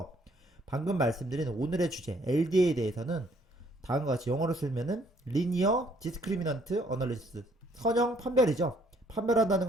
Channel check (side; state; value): both; normal; correlation 0.64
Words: 방금 말씀드린 오늘의 주제 LDA에 대해서는 다음과 같이 영어로 쓰면은 Linear Discriminant Analysis 선형 판별이죠. 판별한다는